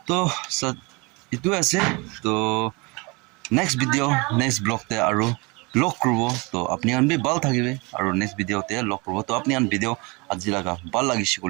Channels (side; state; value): left; quieter; 27.4 dB